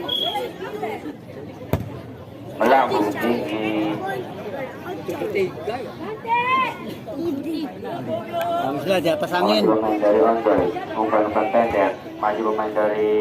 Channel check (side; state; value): both; identical; correlation 1.00